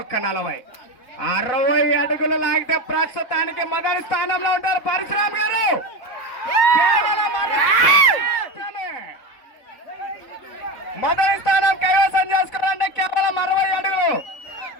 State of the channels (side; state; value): right; late; 4.0 ms